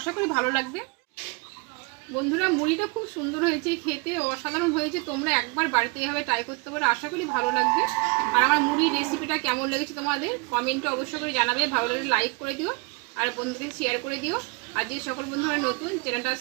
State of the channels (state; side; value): quieter; left; 28.3 dB